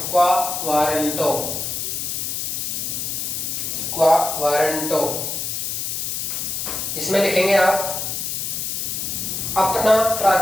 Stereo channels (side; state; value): left; noise; hiss, 2 dB below the sound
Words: WARRANTO, क्वा वारंटो। इसमें लिखेंगे आप अपना